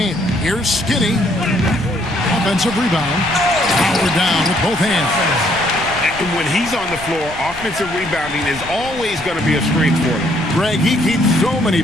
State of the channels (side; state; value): left; noise; rumble, 16 dB below the sound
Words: Here's Skinny. Offensive rebound. Power down with both hands. And when he's on the floor, offensive rebounding is always going to be a strength for him. Greg, he keeps so many